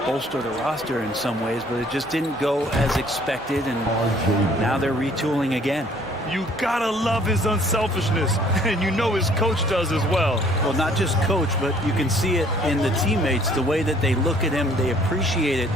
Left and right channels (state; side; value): normal; both; correlation 0.59